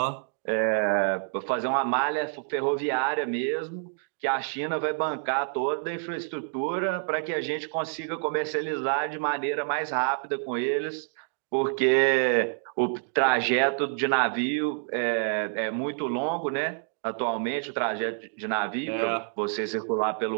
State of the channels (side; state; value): left; silent; digital silence